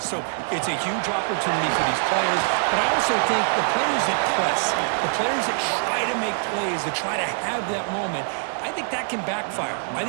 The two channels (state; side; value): silent; left; digital silence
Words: it's a huge opportunity for these players, but I also think the players that press, the players that try to make plays, that try to have that moment, I think that can backfire. I